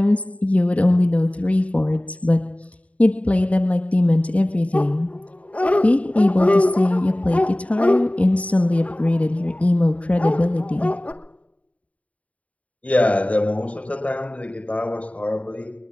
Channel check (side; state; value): right; late; 0.066 ms